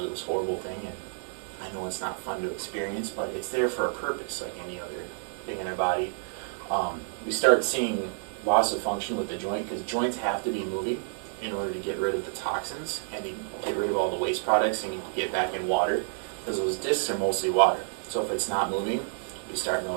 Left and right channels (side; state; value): left; silent; digital silence